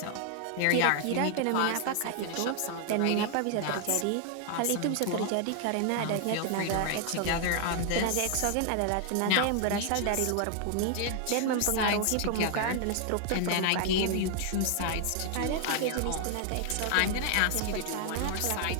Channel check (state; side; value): different; both; correlation 0.00